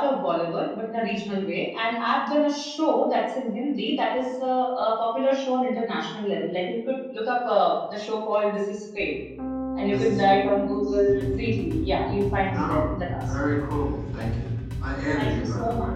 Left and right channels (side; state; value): both; identical; correlation 1.00